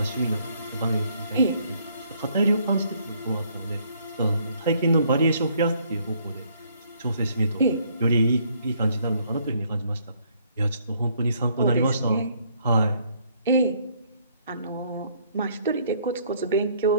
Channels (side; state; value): both; inverted; correlation -0.66